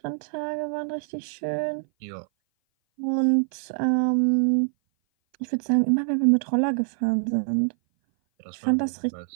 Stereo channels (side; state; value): left; silent; 58 dB below the other